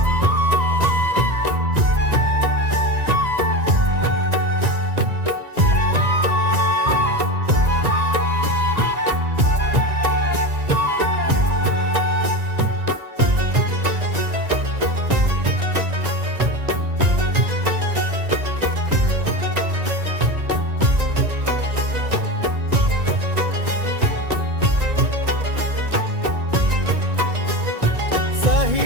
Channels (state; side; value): late; left; 1.9 ms